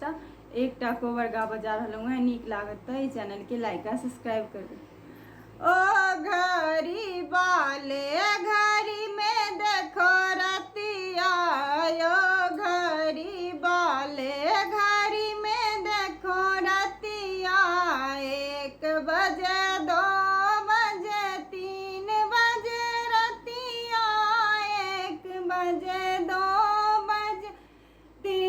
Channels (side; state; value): both; identical; correlation 1.00